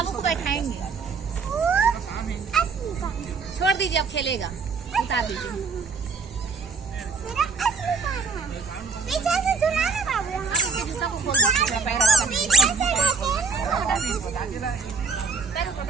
को बैठाएंगे। छोड़ दीजिए, अब खेलेगा। उतार दीजिए। पीछे से झुलाना बाबू। आप इसके जूता को खोल दीजिए, पैर रखा दीजिए।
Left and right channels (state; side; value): quieter; left; 4.7 dB